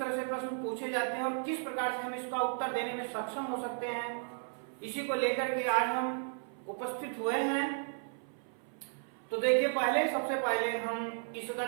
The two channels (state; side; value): silent; left; 55 dB below the other